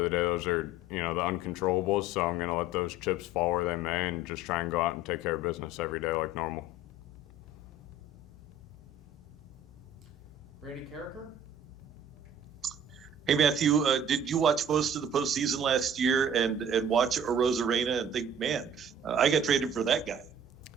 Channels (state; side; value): normal; both; correlation 0.47